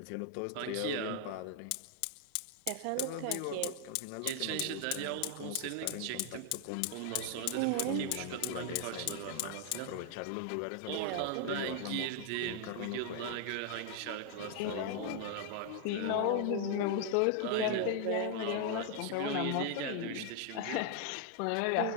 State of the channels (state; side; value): different; both; correlation 0.00